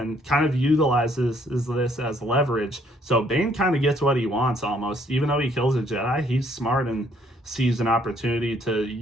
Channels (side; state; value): both; normal; correlation 0.65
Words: kind of utilizes this as leverage. So Bane kind of gets what he wants almost. Even though he kills a Jedi, he's smart and sees an opportunity to